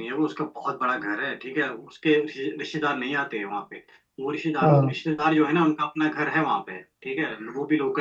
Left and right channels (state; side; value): identical; both; correlation 1.00